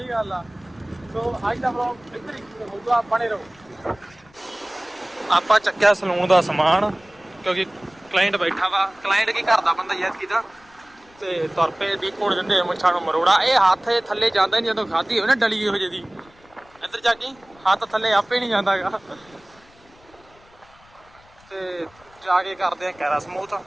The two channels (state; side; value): noise; left; rumble, 28 dB below the sound